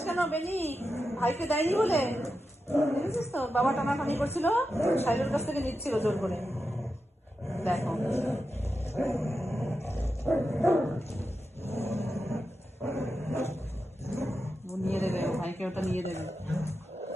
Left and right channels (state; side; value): normal; both; correlation 0.89